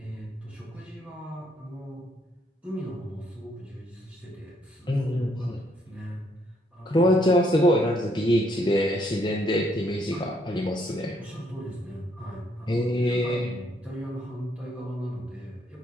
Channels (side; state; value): both; normal; correlation 0.71